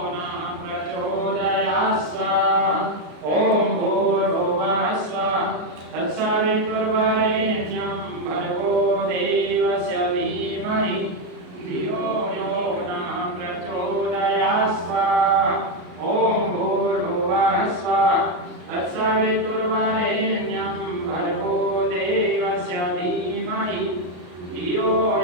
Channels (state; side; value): late; left; 33 ms